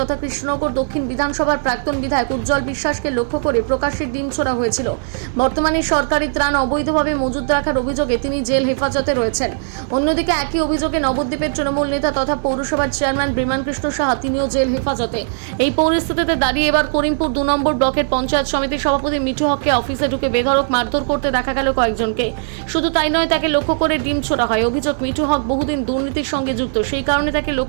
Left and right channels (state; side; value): silent; left; digital silence